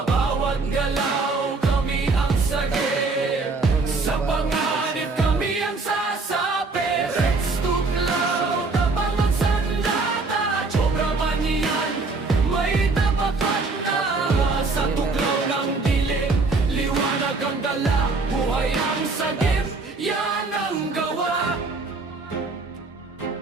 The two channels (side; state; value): left; quieter; 3.8 dB